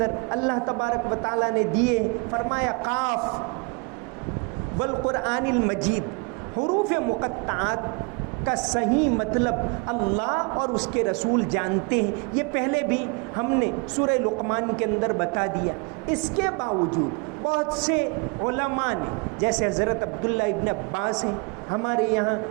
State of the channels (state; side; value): quieter; left; 31.6 dB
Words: اللہ تبارک و تعالیٰ نے دیے۔ فرمایا قاف والقرآن المجید، حروف مقطعات کا صحیح مطلب اللہ اور اس کے رسول جانتے ہیں، یہ پہلے بھی ہم نے سورہ لقمان کے اندر بتا دیا۔ اس کے باوجود بہت سے علماء نے، جیسے حضرت عبداللہ ابن عباس ہیں، ہمارے یہاں